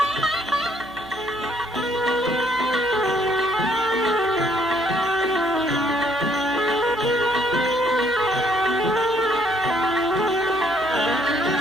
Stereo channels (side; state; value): right; noise; hum, 22 dB below the sound